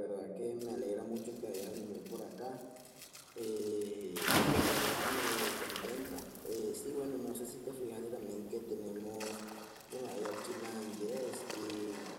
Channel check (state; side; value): identical; both; correlation 1.00